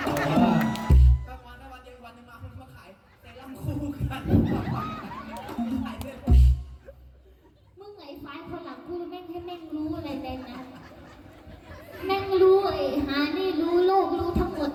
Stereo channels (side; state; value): both; identical; correlation 1.00